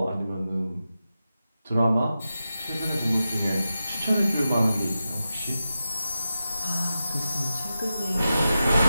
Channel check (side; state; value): both; inverted; correlation -0.91